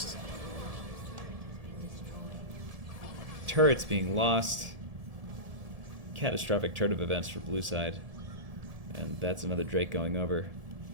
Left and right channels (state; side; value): late; left; 1.7 ms